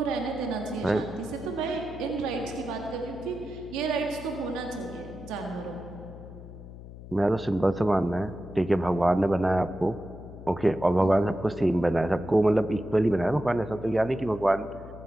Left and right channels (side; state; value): left; noise; hum, 15 dB below the sound